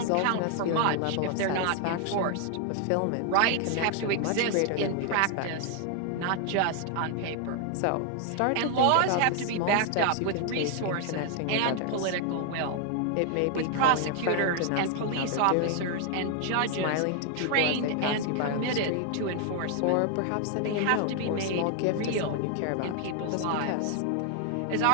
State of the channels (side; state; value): both; different; correlation 0.00